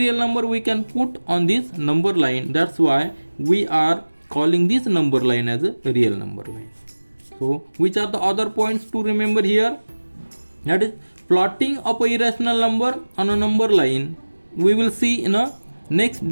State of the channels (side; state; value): both; inverted; correlation -1.00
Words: number we can put on this number line. That's why we are calling this number line as a real number line. So, which are the other points to remember here? That is, plotting of a irrational number on a number line we will see in a next